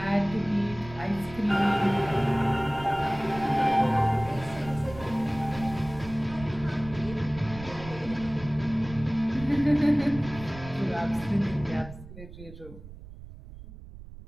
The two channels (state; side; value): noise; right; rumble, 15 dB below the sound